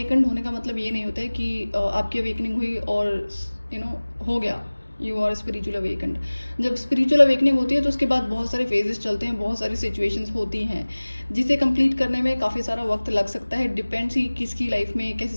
होने का मतलब ये नहीं होता है कि आपकी अवेकनिंग हुई और हो गया, यू आर स्पिरिचुअल अवेकन्ड। जब स्पिरिचुअल अवेकनिंग होती है तो उसके बाद बहुत सारे फेजेस चलते हैं, बहुत सारी सिचुएशंस होती हैं जिसे कंप्लीट करने में काफ़ी सारा वक्त लग सकता है। डिपेंड्स ही किसकी लाइफ में कैसी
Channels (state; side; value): inverted; both; correlation -1.00